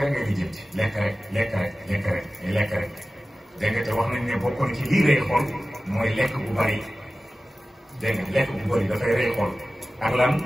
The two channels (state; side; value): normal; both; correlation 0.96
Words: rek ngay di jënd lekk rek lekk rek lekk rek lekk rek dégg nga te wax nañ ne bokkoon ci lii rey xol mooy lekk bu bari dégg nga lekk bu bari dafay rey xol ak lan